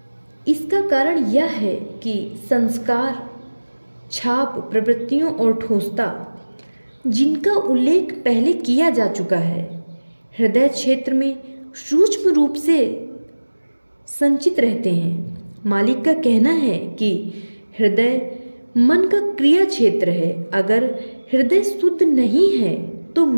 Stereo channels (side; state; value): both; inverted; correlation -1.00